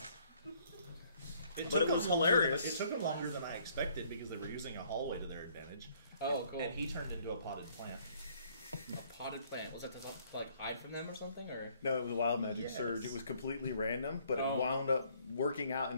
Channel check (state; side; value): inverted; both; correlation -0.63